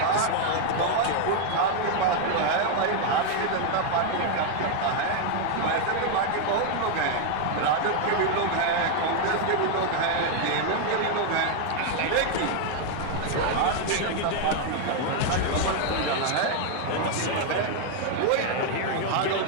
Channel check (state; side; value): different; both; correlation 0.00